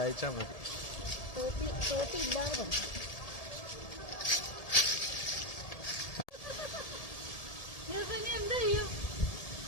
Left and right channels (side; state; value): right; late; 1.7 ms